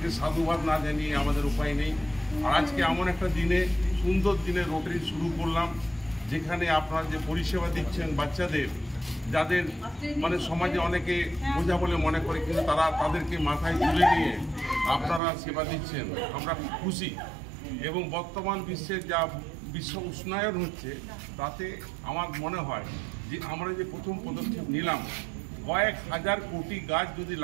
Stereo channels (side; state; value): left; drops out; at 15.2 s